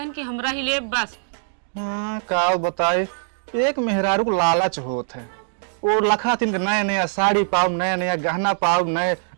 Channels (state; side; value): silent; left; digital silence